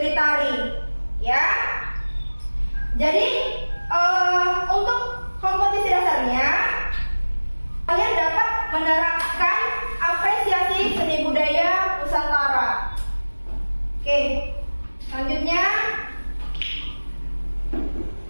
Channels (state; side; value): inverted; both; correlation -1.00